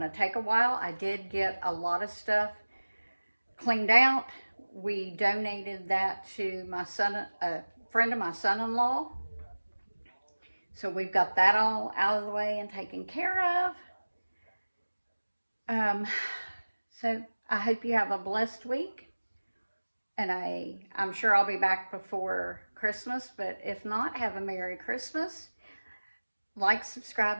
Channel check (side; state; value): both; inverted; correlation -1.00